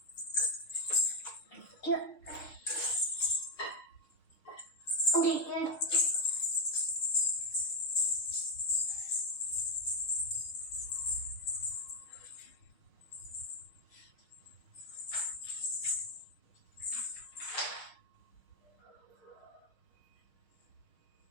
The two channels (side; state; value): right; late; 6.5 ms